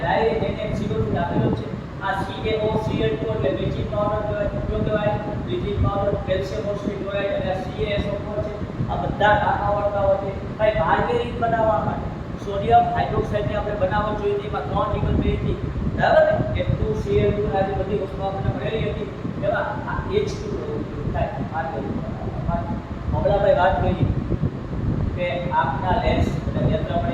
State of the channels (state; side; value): identical; both; correlation 1.00